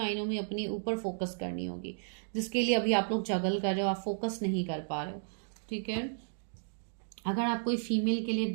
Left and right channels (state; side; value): silent; left; digital silence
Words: में अपने ऊपर फोकस करनी होगी, जिसके लिए अभी आप लोग जगल कर रहे हो, आप फोकस नहीं कर पा रहे हो। ठीक है, अगर आप कोई फीमेल के लिए